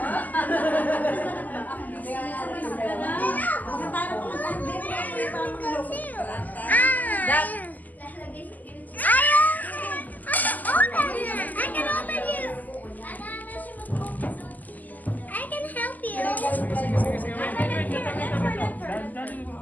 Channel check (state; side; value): late; right; 0.081 ms